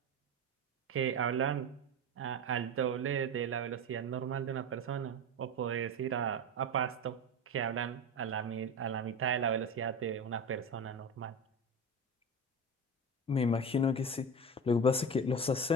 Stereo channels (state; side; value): normal; both; correlation 0.25